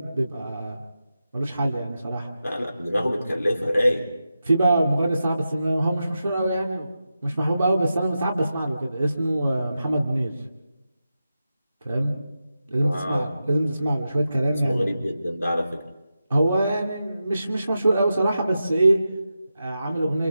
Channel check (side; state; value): both; inverted; correlation -0.90